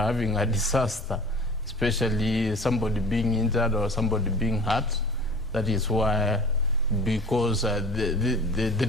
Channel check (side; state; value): both; normal; correlation 0.43